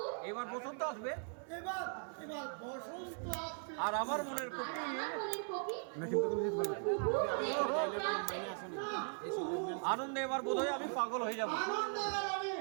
এবার বসন্ত আসবে, এবার বসন্ত আসবে। আর আমার মনের কপি আনন্দে এবার বোধহয় আমি পাগল হয়ে যাবো।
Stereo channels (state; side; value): silent; left; 52 dB below the other